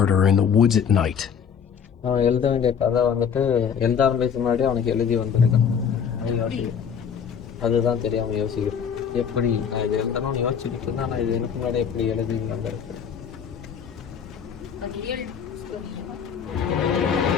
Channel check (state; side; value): quieter; right; 7.3 dB